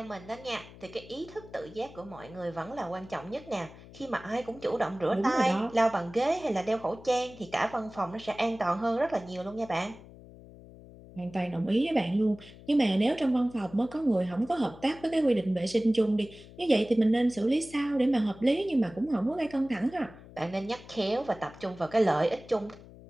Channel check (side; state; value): left; noise; hum, 19 dB below the sound